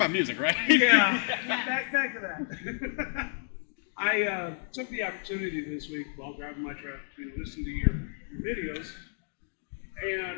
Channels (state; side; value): silent; right; digital silence